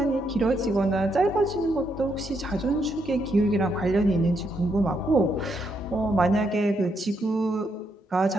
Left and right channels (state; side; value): normal; both; correlation 0.78